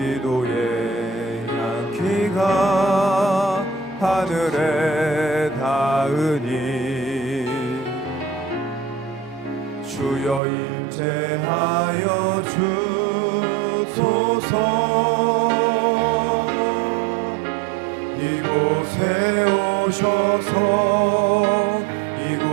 향기가 하늘에 닿으니 주여 임재하여 주소서. 이곳에 오셔서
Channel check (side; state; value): left; drops out; at 10.4 s